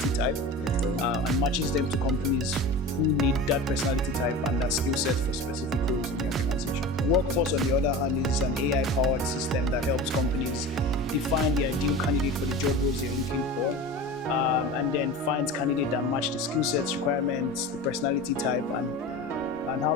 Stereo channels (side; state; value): both; normal; correlation 0.32